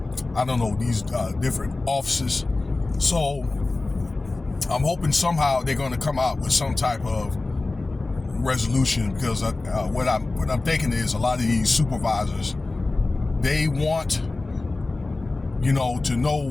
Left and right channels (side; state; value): right; quieter; 3.3 dB